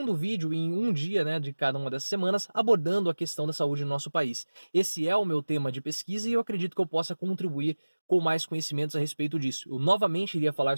vídeo em um dia, de cada uma dessas semanas, abordando a questão da saúde no nosso país. Esse é o meu tema de pesquisa e eu acredito que eu possa contribuir com mais conhecimentos a respeito disso. Eu novamente iria falar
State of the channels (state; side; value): inverted; both; correlation -1.00